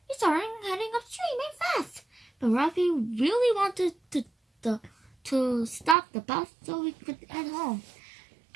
We started heading upstream and fast. But Rafi really wanted to stop the bus so we could head home.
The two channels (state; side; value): drops out; left; at 6.0 s